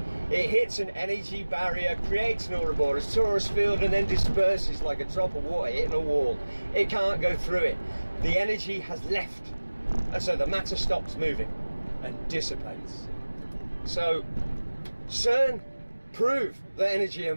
It hits an energy barrier, creates an Ouroboros torus field, and then disperses like a drop of water hitting a wall. It can't go through it. The energy has left, and so the matter stops moving and dissipates. So CERN proved that energy and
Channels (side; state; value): both; inverted; correlation -1.00